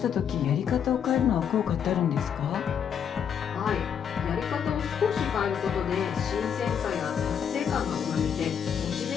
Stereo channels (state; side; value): quieter; right; 8.0 dB